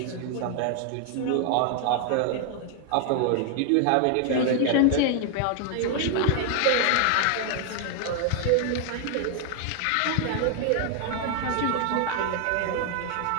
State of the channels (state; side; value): different; both; correlation 0.00